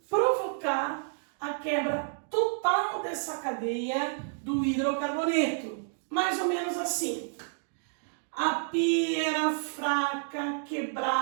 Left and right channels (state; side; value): silent; left; digital silence